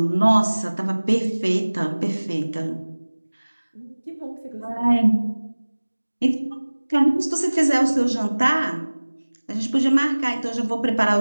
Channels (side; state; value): both; inverted; correlation -1.00